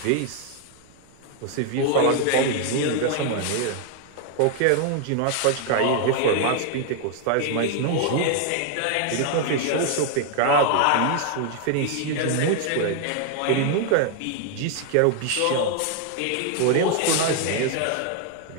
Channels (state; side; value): different; both; correlation 0.00